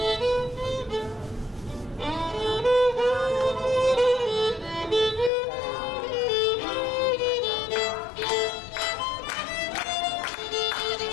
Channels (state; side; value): drops out; right; at 5.3 s